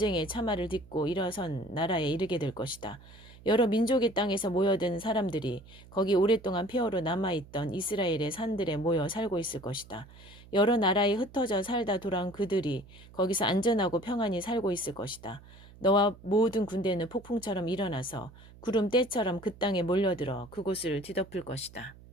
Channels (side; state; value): right; noise; hum, 21 dB below the sound